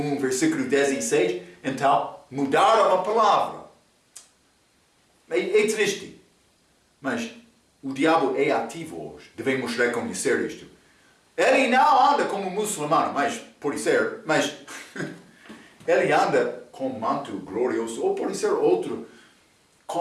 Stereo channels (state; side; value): identical; both; correlation 1.00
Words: versículo 16. Então mudaram a palavra. É triste. Mas o diabo é ativo hoje. Devemos reconhecer isto. Ele não anda como muçulmano, mas pode ser, mas ele anda com manto glorioso, ou pode ser outro,